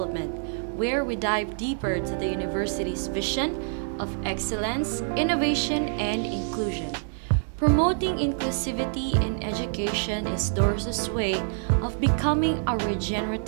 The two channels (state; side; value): silent; left; digital silence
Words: where we dive deeper to the university's vision of excellence, innovation, and inclusion. Promoting inclusivity in education is DOrSU's way of becoming a